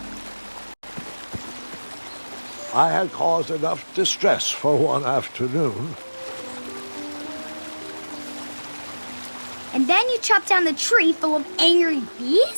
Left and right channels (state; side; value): inverted; both; correlation -1.00